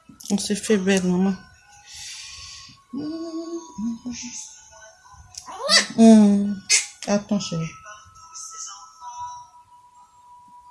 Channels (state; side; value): identical; both; correlation 1.00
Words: On s'est fait belle, maman. Attends, chérie.